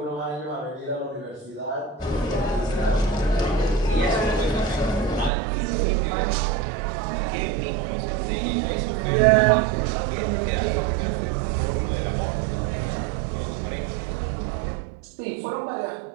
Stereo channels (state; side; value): drops out; left; at 5.3 s